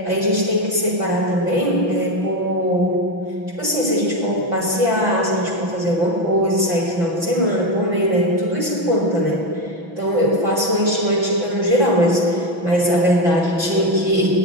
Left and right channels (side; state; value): left; late; 6.0 ms